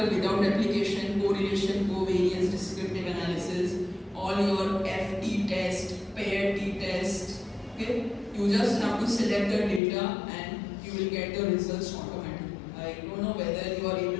without replication, correlation, covariance, descriptive analysis, all your FT test, pair T test. Okay, you just have to select the data and you will get the results automatically. I don't know whether you are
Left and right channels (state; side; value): drops out; right; at 9.8 s